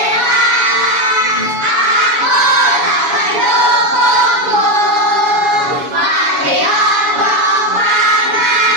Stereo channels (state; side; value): late; left; 7.1 ms